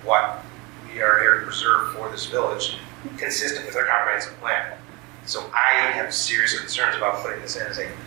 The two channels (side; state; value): left; quieter; 27.0 dB